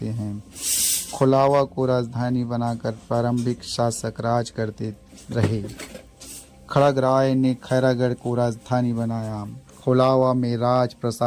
हैं। खोलावा को राजधानी बनाकर प्रारंभिक शासक राज करते रहे। खड़ग राय ने खैरागढ़ को राजधानी बनाया। खोलावा में राज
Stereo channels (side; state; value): both; identical; correlation 1.00